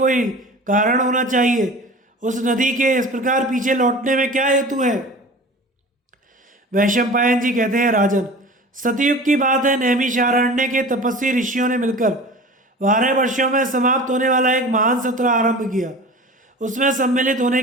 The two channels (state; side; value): normal; both; correlation 0.38